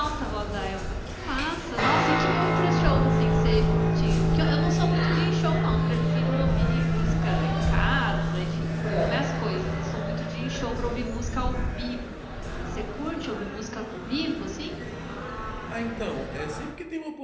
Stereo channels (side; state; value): both; identical; correlation 1.00